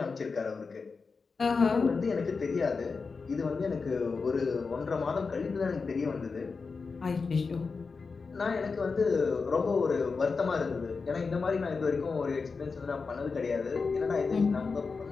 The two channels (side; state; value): right; quieter; 4.7 dB